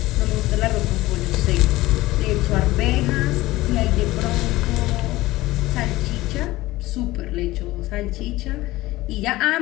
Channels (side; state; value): right; quieter; 18.1 dB